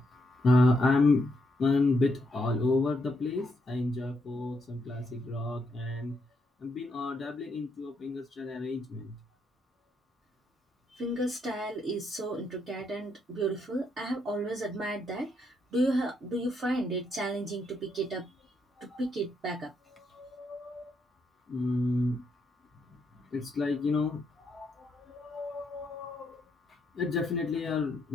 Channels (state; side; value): normal; both; correlation 0.78